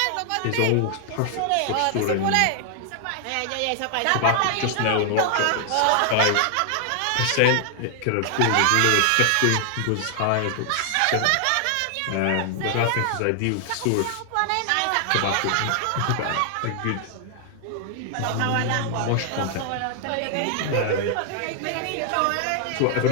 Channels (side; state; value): both; different; correlation 0.00